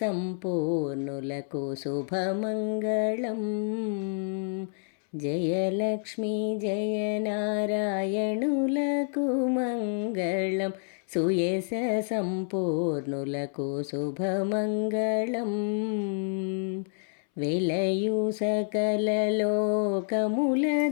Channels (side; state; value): right; silent; 59 dB below the other